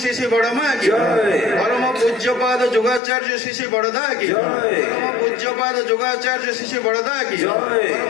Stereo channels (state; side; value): drops out; right; at 3.0 s